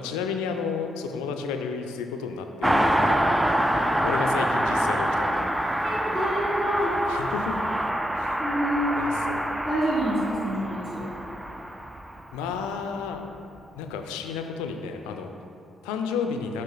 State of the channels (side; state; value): both; normal; correlation 0.81